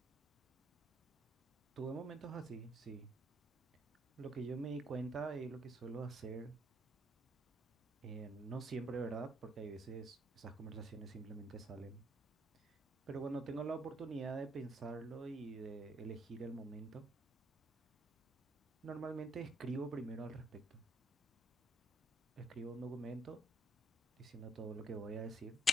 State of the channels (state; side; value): normal; both; correlation 0.70